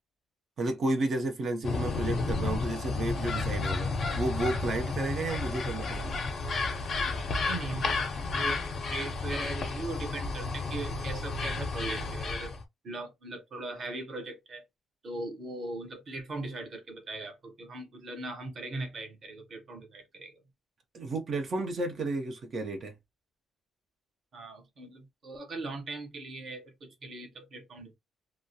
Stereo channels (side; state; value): both; normal; correlation 0.77